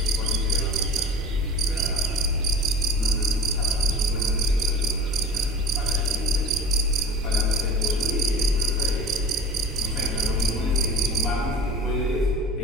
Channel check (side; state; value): both; normal; correlation 0.39